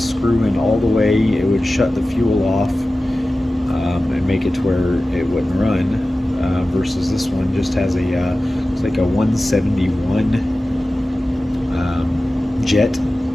screw in all the way, it would shut the fuel off and make it to where it wouldn't run. Versus this one just has a it's like a 171 jet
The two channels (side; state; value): both; normal; correlation 0.96